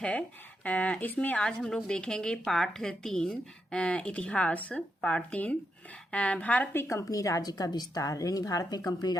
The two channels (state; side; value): normal; both; correlation 0.83